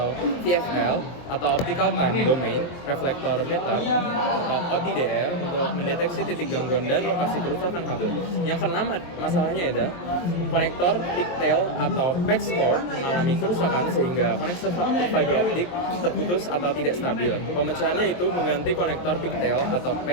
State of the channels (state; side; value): late; right; 23 ms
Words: VFL atau optical time domain reflector meter atau OTDR untuk mendeteksi titik gangguan dan lokasi kerusakan kabel. Yang keenam, masalahnya ada konektor pigtail atau patch cord mengalami kerusakan sehingga koneksi fiber optik terputus atau tidak stabil. Pemecahannya itu mengganti konektor pigtail atau